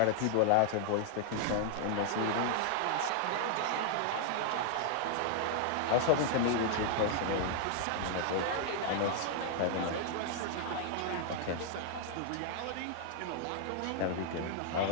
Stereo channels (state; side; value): different; both; correlation 0.00